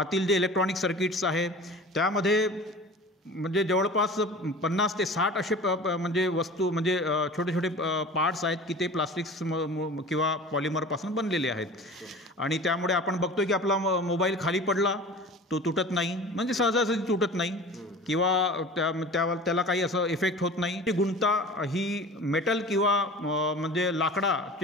जे इलेक्ट्रॉनिक सर्किट्स आहे त्यामध्ये म्हणजे जवळपास 50 ते 60 असे म्हणजे वस्तू म्हणजे छोटे छोटे पार्ट्स आहेत की ते प्लास्टिक्स किंवा पॉलिमरपासून बनलेले आहेत आणि त्यामुळे आपण बघतोय की आपला मोबाईल खाली पडला तो तुटत नाही, म्हणजे सहजासहजी तुटत नाही किंवा त्याला काही असं इफेक्ट होत नाही. ती गुणता ही मेटल किंवा म्हणजे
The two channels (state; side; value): normal; both; correlation 0.39